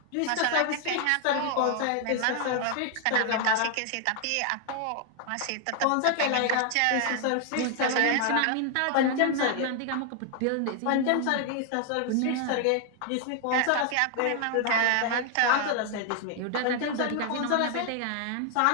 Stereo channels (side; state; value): both; different; correlation 0.00